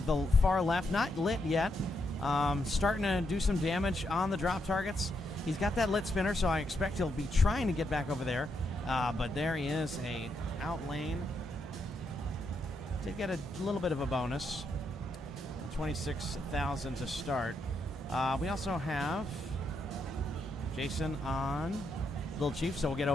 far left. Not lit yet. Starting to do some damage on the drop targets. He's got that lit spinner, so I expect he'll be trying to get back over there. But there he is, a out lane. Did get a little bit of a bonus. 26,000 to start. We also have Jason on Little Chief, so we'll get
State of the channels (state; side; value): normal; both; correlation 0.80